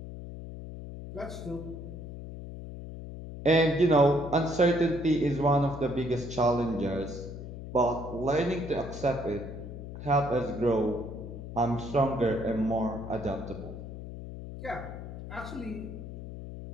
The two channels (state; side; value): noise; left; hum, 10 dB below the sound